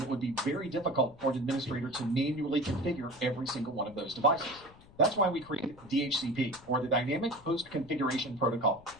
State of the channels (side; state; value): left; noise; rumble, 23 dB below the sound